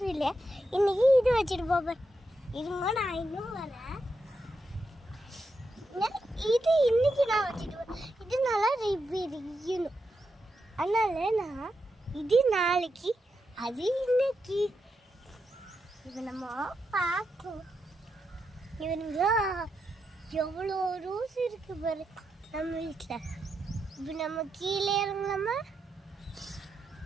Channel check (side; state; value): both; normal; correlation 0.85